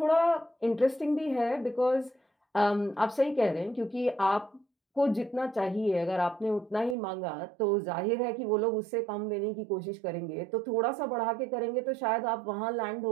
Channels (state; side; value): drops out; left; at 7.0 s